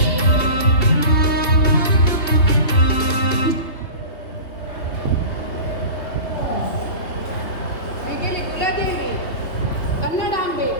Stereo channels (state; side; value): late; right; 3.2 ms